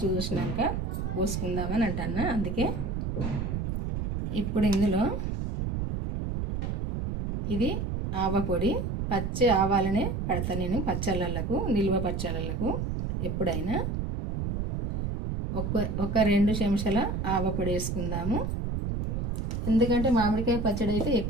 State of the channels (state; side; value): noise; right; rumble, 2 dB below the sound